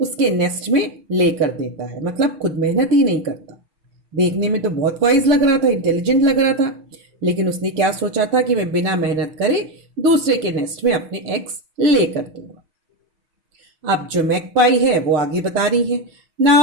नेस्ट में ले कर देता है. मतलब खुद मेहनत ही नहीं करता. देखने में तो बहुत वाइज लग रहा था, इंटेलिजेंट लग रहा था, लेकिन उसने क्या सोचा था कि मैं बिना मेहनत करे दूसरे के नेस्ट में अपने एग्स ले कर दूंगा. अब जो मैकपाई है वो आगे बता रही है.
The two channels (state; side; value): late; left; 6.4 ms